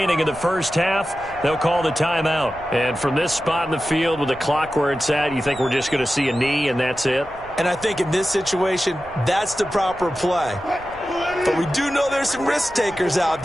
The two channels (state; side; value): noise; right; rumble, 21 dB below the sound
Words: in the first half, they'll call the timeout. And from this spot in the field with the clock where it's at, you think we're just going to see a knee and that's it? And I think in this situation, that's the proper play. But we do know there's some risk takers out